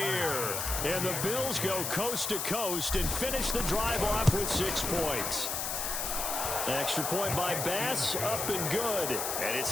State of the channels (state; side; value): noise; left; hiss, 2 dB below the sound